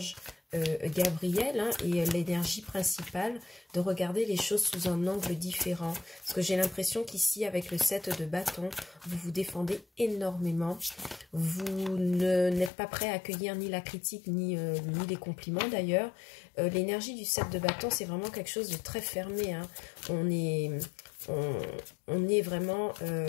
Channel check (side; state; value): right; drops out; at 12.7 s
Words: Gabriel hein, et l'énergie principale, de regarder les choses sous un angle différent. Parce que j'ai l'impression qu'ici, avec le 7 de bâton, vous vous défendez énormément. Vous n'êtes pas prêt à accueillir ni la critique, ni les compliments d'ailleurs. L'énergie du 7 de bâton, c'est vraiment quelque chose de très fermé. Hein. On est vraiment